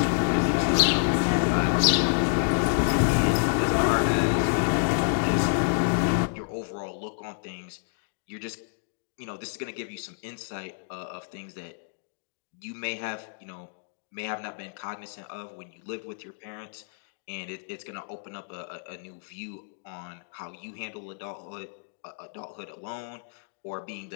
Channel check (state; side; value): silent; right; digital silence